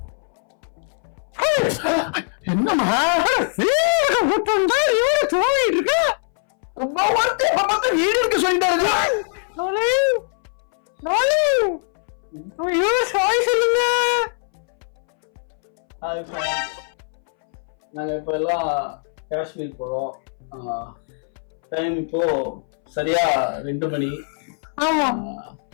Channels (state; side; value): silent; right; 62 dB below the other